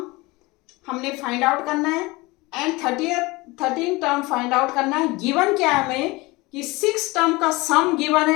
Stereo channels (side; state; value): right; quieter; 22.9 dB